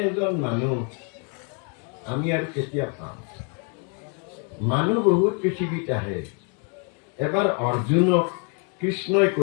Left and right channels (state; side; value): quieter; right; 36.9 dB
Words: এজন মানুহ আমি আৰু কেতিয়া পাম? মানুহ বহুত পৃথিৱীত আহে। এবাৰ অৰ্জুনক কৃষ্ণই